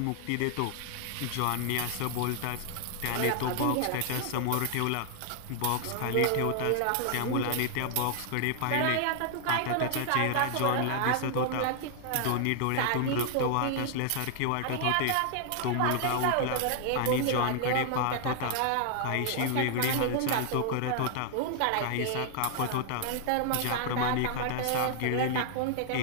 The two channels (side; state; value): both; different; correlation 0.00